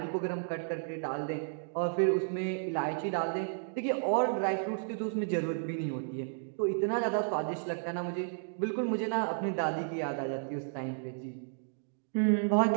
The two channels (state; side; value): silent; left; digital silence